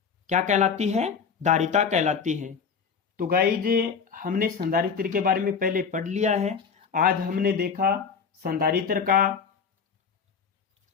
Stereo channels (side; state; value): right; quieter; 6.2 dB